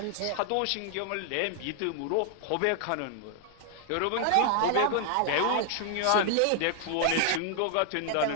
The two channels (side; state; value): both; different; correlation 0.00